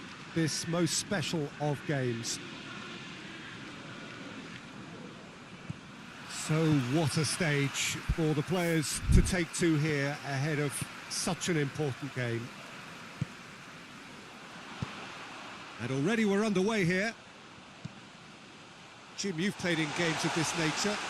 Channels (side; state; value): both; identical; correlation 1.00